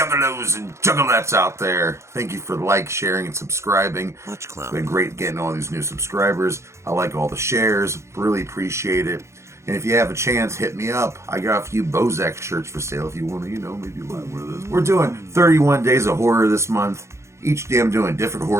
and juggalettes out there. Thank you for sharing, and subscribing. Much clown. It's been great getting all these new subscribers. I like all the shares. Really appreciate it. And if you have a chance, hit me up. I got a few Bozak shirts for sale if you want to, maybe buy one of those. We're doing 31 Days of Horror this month. Each day I'm doing a different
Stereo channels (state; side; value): late; left; 0.14 ms